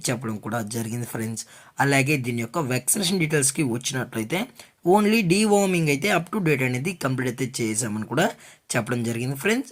చెప్పడం కూడా జరిగింది ఫ్రెండ్స్. అలాగే దీని యొక్క వ్యాక్సినేషన్ డీటెయిల్స్కి వచ్చినట్లయితే ఓన్లీ డీవార్మింగ్ అయితే అప్ టు డేట్ అనేది కంప్లీట్ అయితే చేసామని కూడా చెప్పడం జరిగింది ఫ్రెండ్స్.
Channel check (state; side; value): identical; both; correlation 1.00